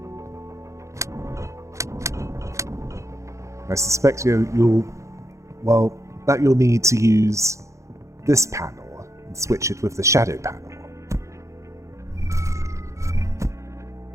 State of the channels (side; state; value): left; late; 0.15 ms